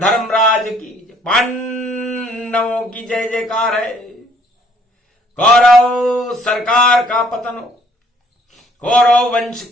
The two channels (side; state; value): both; normal; correlation 0.62